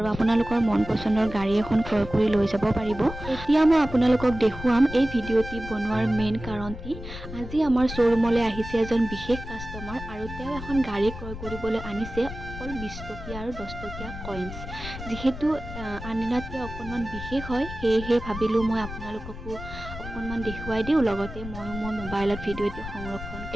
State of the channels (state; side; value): noise; left; rumble, 10 dB below the sound